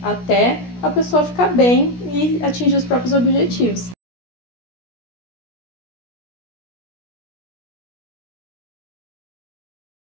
até a pessoa ficar bem e atingir os próprios objetivos.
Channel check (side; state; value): right; late; 17 ms